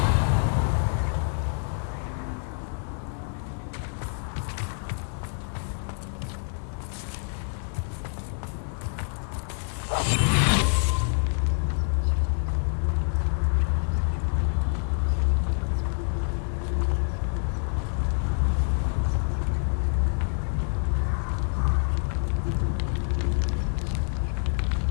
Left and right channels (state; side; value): silent; right; 60 dB below the other